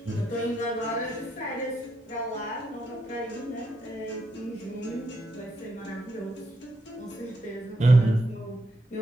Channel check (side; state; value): both; normal; correlation 0.80